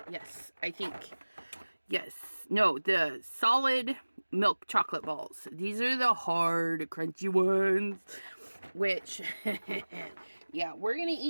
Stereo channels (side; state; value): both; inverted; correlation -1.00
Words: Yes, I think. Yes. No, the solid milk chocolate balls. These are the hard, crunchy ones. Which, yeah, we're going to